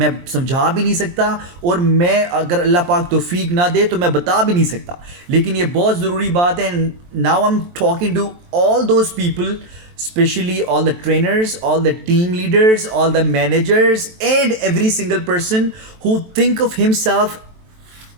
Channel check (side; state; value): left; late; 23 ms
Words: سمجھا بھی نہیں سکتا, اور میں اگر اللہ پاک توفیق نہ دے تو میں بتا بھی نہیں سکتا. لیکن یہ بہت ضروری بات ہے. Now I am talking to all those people, specially all the trainers, all the team leaders, all the managers, and every single person who think of himself